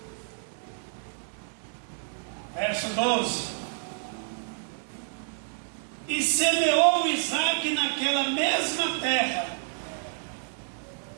Verso 12. E semeou Isaque naquela mesma terra,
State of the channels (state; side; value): silent; left; digital silence